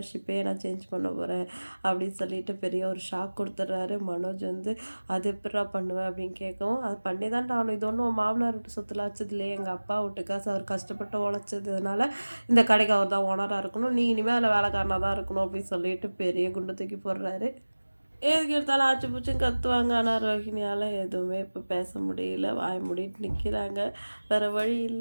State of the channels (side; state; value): both; inverted; correlation -1.00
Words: நான் சேஞ்ச் பண்ண போகிறேன் அப்படின்னு சொல்லிட்டு பெரிய ஒரு ஷாக் கொடுத்துட்றாரு. மனோஜ் வந்து அது எப்படா பண்ணுவேன் அப்படின்னு கேட்கவும், அது பண்ணி தான் ஆகணும். இது ஒன்றும் மாமனார் வீட்டு சொத்துல வச்சது இல்லையே, எங்கள் அப்பா வீட்டு காசு, அவர் கஷ்டப்பட்டு உழைச்சதுனால இந்த கடைக்கு அவர் தான் ஓனராக இருக்கணும், நீ இனிமேல் அதில் வேலைக்காரனாக தான் இருக்கணும் அப்படின்னு சொல்லிட்டு பெரிய குண்டு தூக்கி போடுறாரு. எதுக்கு எடுத்தாலும் ஆச்சு பூச்சும் கத்துவாங்க. ஆனால் ரோஹிணியால் எதுவுமே இப்போ பேச முடியல, வாய் மூடிட்டு நிற்கிறாங்க. வேறு வழி